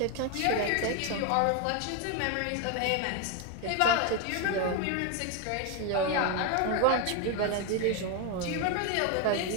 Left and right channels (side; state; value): both; different; correlation 0.01